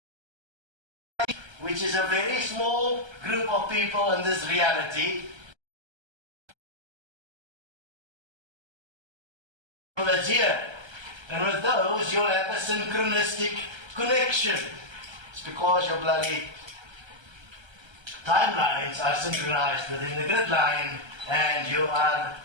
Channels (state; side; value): late; left; 1.3 ms